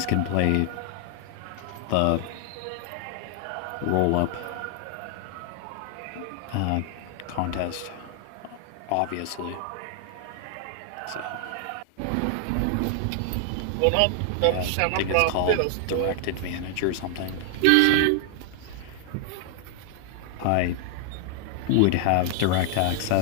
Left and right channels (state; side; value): different; both; correlation 0.00